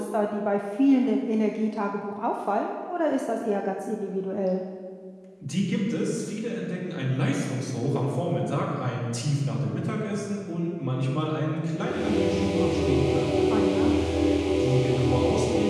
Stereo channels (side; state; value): both; identical; correlation 1.00